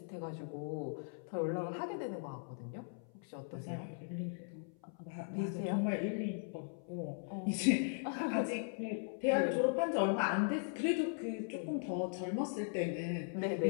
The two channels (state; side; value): silent; right; 52 dB below the other